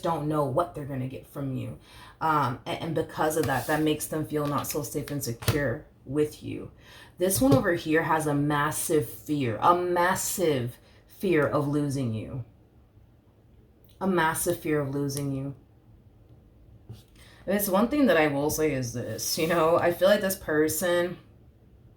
don't know what they're going to get from you. And because of that, that makes them feel not so safe and secure with you. This one over here has a massive fear of losing you. A massive fear of losing you. And it's one thing that I will say is this, you know, I feel like this person,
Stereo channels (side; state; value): both; identical; correlation 1.00